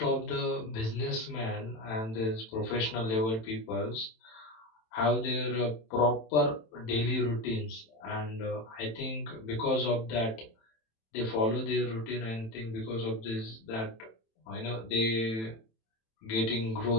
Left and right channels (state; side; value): late; right; 27 ms